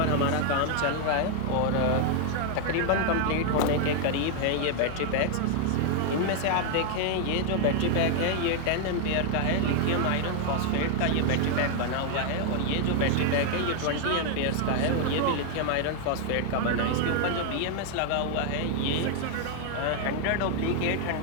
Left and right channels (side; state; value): both; different; correlation 0.00